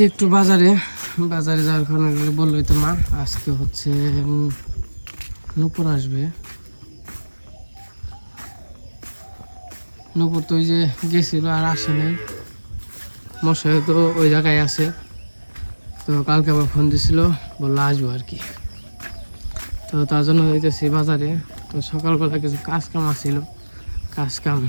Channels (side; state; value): both; inverted; correlation -1.00